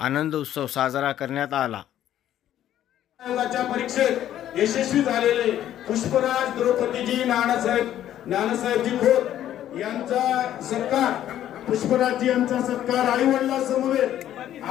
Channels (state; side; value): quieter; right; 11.7 dB